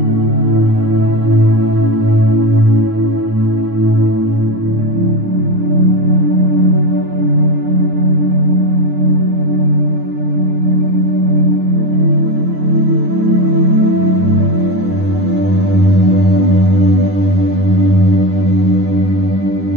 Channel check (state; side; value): late; left; 9.7 ms